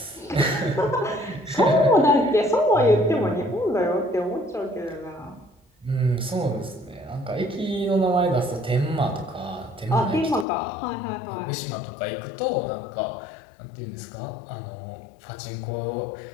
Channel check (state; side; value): drops out; right; at 10.5 s